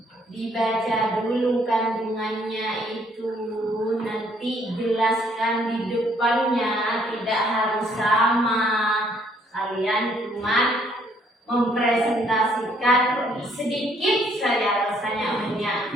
Dibaca dulu kandungannya itu, nanti jelaskan di depannya, tidak harus sama. Kalian cuma mempresentasikan sedikit saja rasanya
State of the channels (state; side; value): normal; both; correlation 0.66